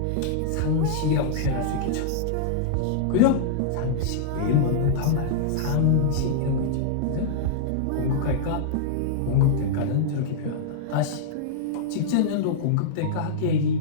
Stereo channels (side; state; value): both; different; correlation -0.02